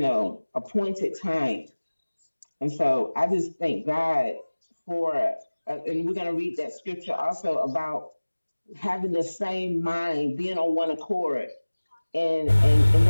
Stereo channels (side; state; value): both; inverted; correlation -1.00